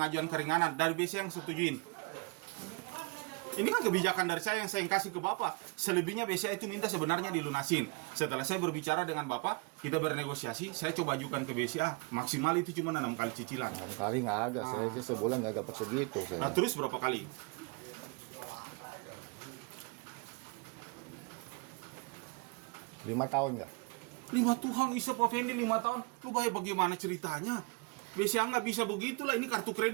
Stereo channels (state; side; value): quieter; left; 30.1 dB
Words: keringanan dari BCA yang setujuin. Ini kan kebijakan dari saya yang saya kasih ke Bapak. Selebihnya BCA itu minta sebenarnya dilunasin. Setelah saya berbicara dengan Bapak, kita bernegosiasi, saya coba ajukan ke BCA. Maksimal itu cuma 6 kali cicilan. 6 kali nggak ada. Saya aja sebulan nggak dapat segitu Nah saya. terus berapa kali? 5 tahun nggak? 5 Tuhan isa Pak Fendi 5 tahun. Lu bagaimana ceritanya? BCA nggak bisa begitulah. Ini kartu